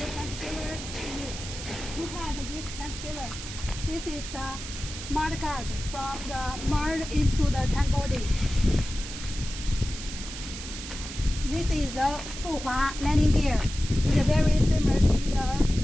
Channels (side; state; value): right; noise; hiss, 10 dB below the sound